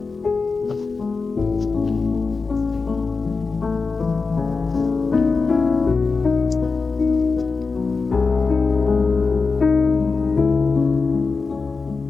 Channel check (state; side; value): quieter; right; 4.4 dB